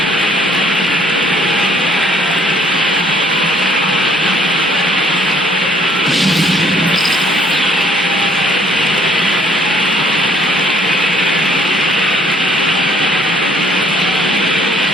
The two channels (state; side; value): normal; both; correlation 0.62